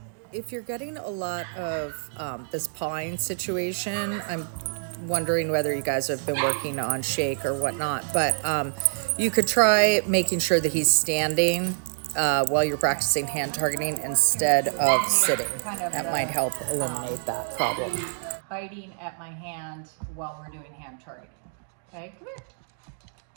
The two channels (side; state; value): left; silent; digital silence